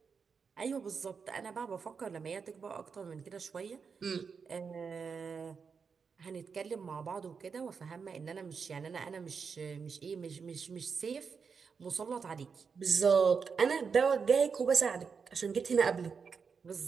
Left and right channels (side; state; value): left; quieter; 5.7 dB